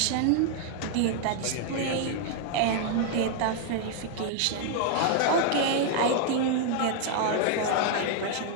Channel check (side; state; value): both; different; correlation 0.00